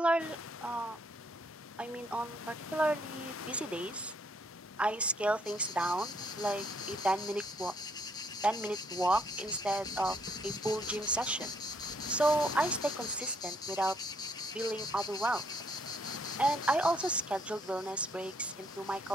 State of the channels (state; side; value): normal; both; correlation 0.69